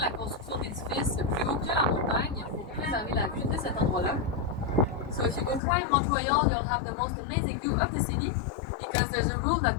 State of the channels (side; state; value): right; drops out; at 5.6 s